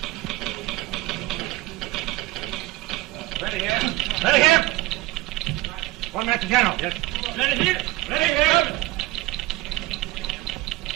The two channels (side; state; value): left; quieter; 18.5 dB